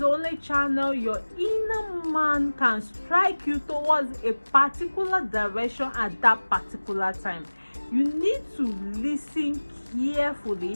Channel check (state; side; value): inverted; both; correlation -1.00